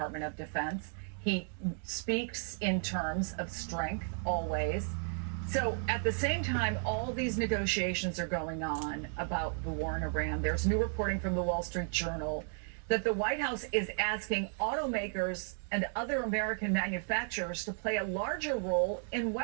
of Defense. He speaks in terms of strength always. So at the same time, all these negotiations are going on about the war in Iran. There's new reporting from the Wall Street Journal that the White House is asking automakers and other American manufacturers to play a larger role in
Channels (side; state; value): left; silent; 55 dB below the other